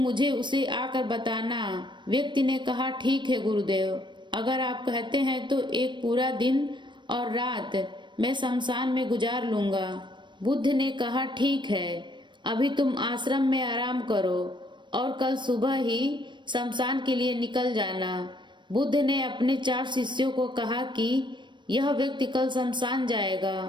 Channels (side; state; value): left; late; 0.22 ms